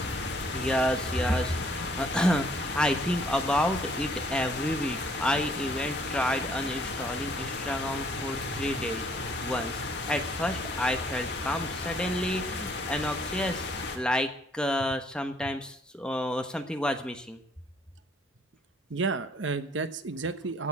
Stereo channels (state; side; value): normal; both; correlation 0.63